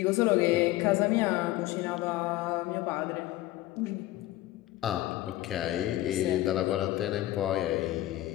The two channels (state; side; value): quieter; right; 16.0 dB